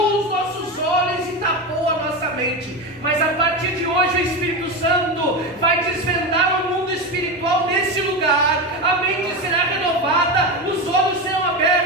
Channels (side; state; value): both; normal; correlation 0.18